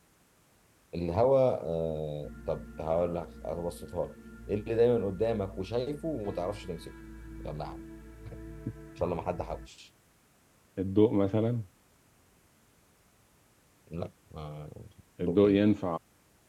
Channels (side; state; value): both; identical; correlation 1.00